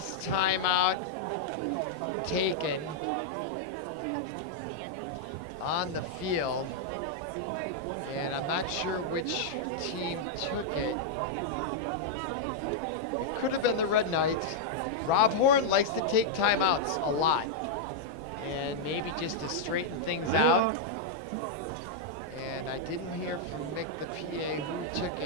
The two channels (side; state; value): both; normal; correlation -0.02